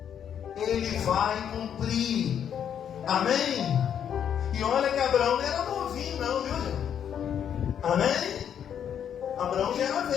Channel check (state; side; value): quieter; right; 8.8 dB